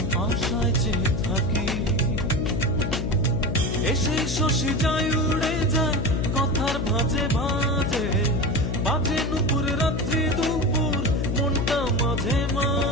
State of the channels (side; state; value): left; noise; hum, 3 dB below the sound